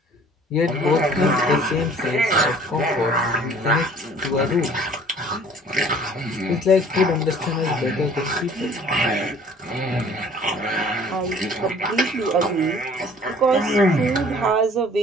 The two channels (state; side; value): normal; both; correlation 0.53